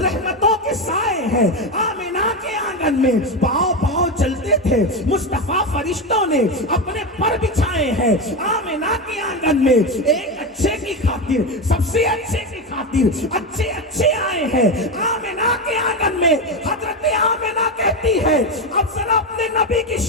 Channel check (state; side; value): normal; both; correlation 0.15